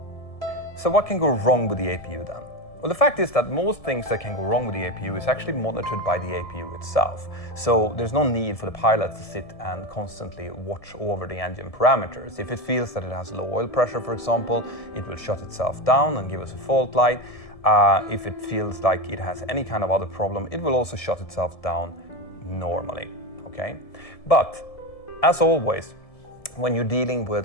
So what can go wrong with the APU then? Well, the fact is that most things that can go wrong with the APU is actually monitored by the APU itself. So there's no need for the pilot to sit and constantly watch over the engine parameters. If it feels that it has low oil pressure, for example, it will shut itself down and give us a fault light. If it feels like it has any kind of other problem, it will also shut itself down normally, okay? But as always, when you're dealing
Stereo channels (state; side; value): late; right; 1.7 ms